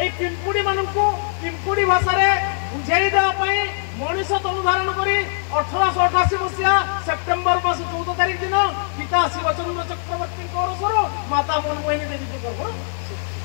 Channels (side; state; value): right; silent; 65 dB below the other